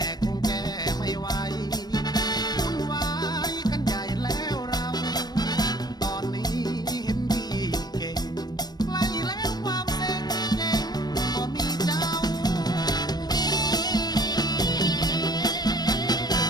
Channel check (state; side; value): late; right; 0.19 ms